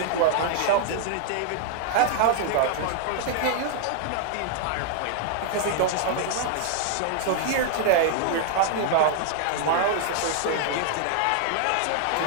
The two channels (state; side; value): different; both; correlation 0.00